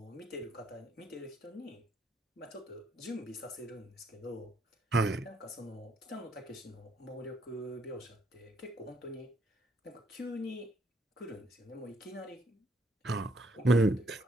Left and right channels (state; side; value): normal; both; correlation 0.71